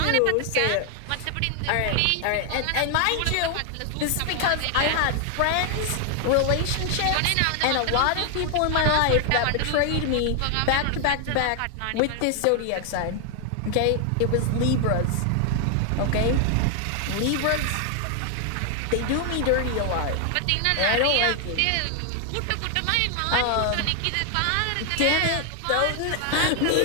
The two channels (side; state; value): both; different; correlation 0.00